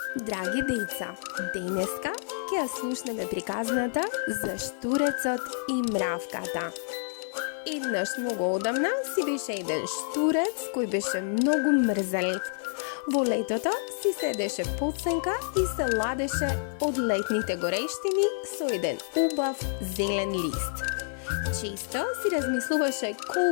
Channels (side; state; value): right; silent; 59 dB below the other